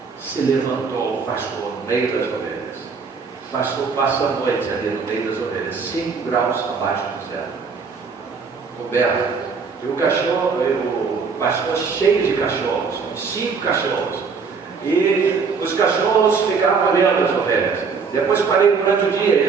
se levantou o pastor no meio das ovelhas. O pastor passa a noite ali no meio das ovelhas, 5 graus abaixo de zero. Roberto, e o cachorro, o pastor cheio de cachorros, 5 cachorros. E os cachorros ficavam olhando as ovelhas. Depois parei durante o dia,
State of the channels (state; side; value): quieter; left; 5.3 dB